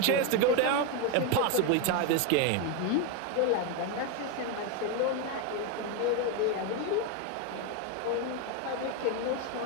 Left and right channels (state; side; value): different; both; correlation 0.02